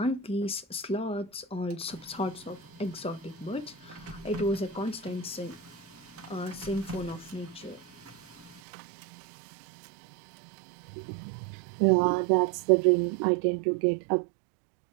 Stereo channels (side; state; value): left; drops out; at 8.6 s